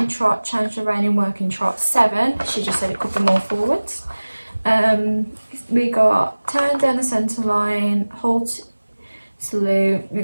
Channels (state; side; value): inverted; both; correlation -1.00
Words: trot, change the rein in working trot, 7. She just said it could be more forwards. We got turn down the centre line, halt, salute, we